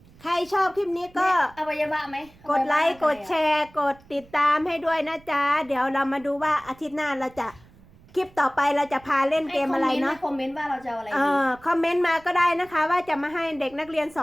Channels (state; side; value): noise; right; rumble, 26 dB below the sound